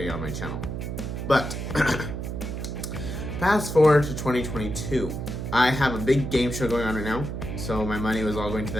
on my channel. But fast forward to 2022. I have a big game show going on right now, so my money was all going to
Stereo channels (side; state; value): right; noise; hum, 5 dB below the sound